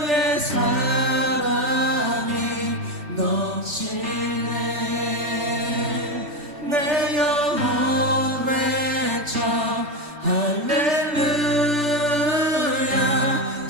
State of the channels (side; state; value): left; late; 3.4 ms